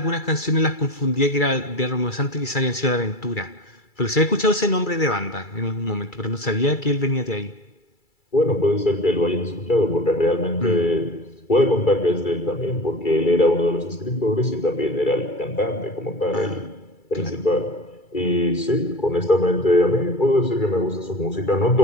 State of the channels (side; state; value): right; late; 2.3 ms